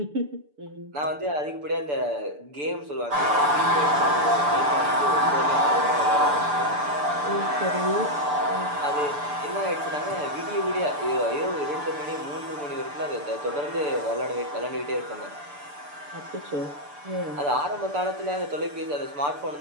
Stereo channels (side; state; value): left; late; 6.8 ms